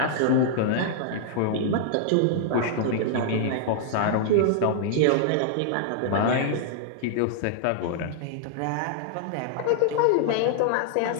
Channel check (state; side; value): different; both; correlation -0.01